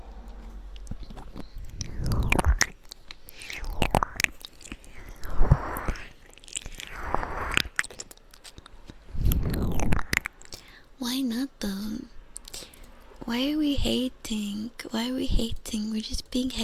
Why not though? Why are we hating? Why are we hating? We're just being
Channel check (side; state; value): both; identical; correlation 1.00